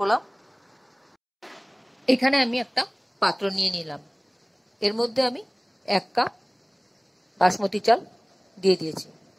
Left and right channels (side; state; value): both; identical; correlation 1.00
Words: এখানে আমি একটা পাত্র নিয়ে নিলাম, এর মধ্যে আমি 1 কাপ বাসমতি চাল দিয়ে দিয়েছি।